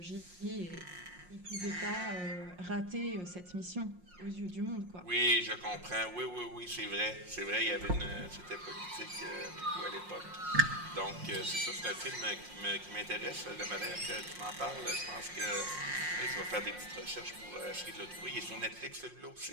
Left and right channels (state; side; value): late; left; 5.6 ms